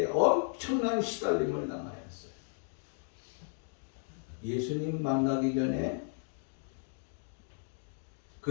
엄청난 시달림을 당하였어요. 예수님 만나기 전에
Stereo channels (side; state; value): right; silent; 55 dB below the other